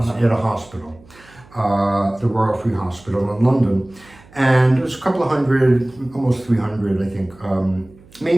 at a hospital, the Royal Free Hospital in London. And it was a couple of hundred, almost 300, I think,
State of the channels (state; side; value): noise; right; hum, 25 dB below the sound